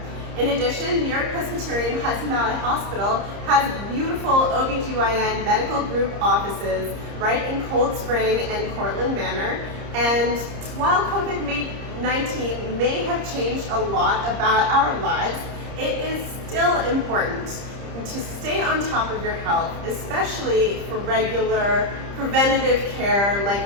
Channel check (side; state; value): left; late; 30 ms